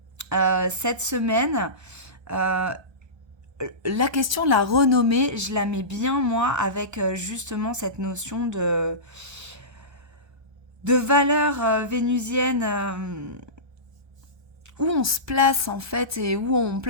Cette semaine, la question de la renommée, je la mets bien, moi, avec justement cette notion de valeur vénusienne, où on se place en fait et où on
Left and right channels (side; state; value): left; late; 1.2 ms